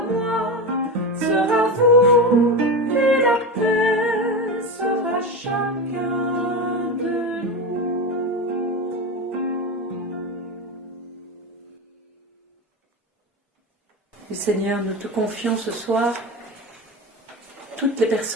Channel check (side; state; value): both; normal; correlation 0.20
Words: moi, sera vous, et la paix sera chacun de nous. Et Seigneur, nous te confions ce soir toutes les